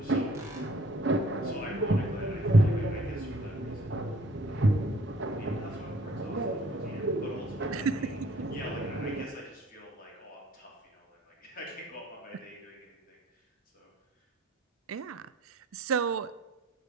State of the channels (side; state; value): both; normal; correlation 0.58